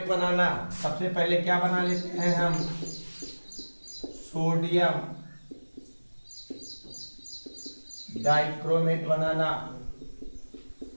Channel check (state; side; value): inverted; both; correlation -1.00